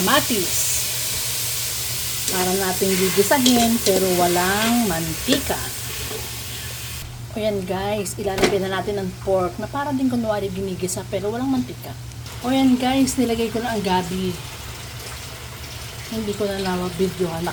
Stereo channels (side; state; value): both; identical; correlation 1.00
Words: para nating gigisahin pero walang mantika. O yan guys, ilalagay na natin ang pork na para din kunwari ginigisa pero walang mantika. O yan guys, nilagay ko na ang gabi. Hindi ko na na-videohan,